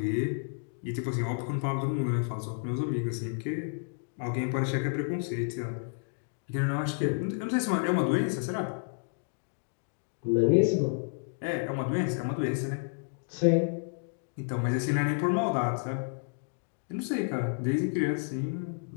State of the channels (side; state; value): right; silent; digital silence